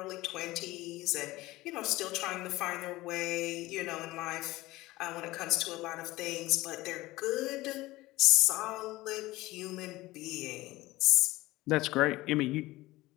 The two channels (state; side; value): quieter; right; 18.8 dB